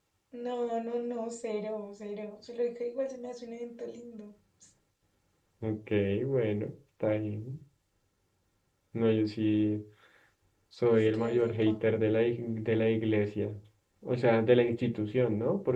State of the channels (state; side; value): identical; both; correlation 1.00